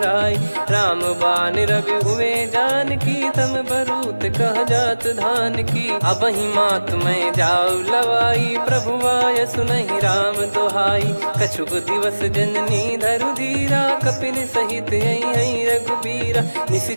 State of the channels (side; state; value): both; inverted; correlation -1.00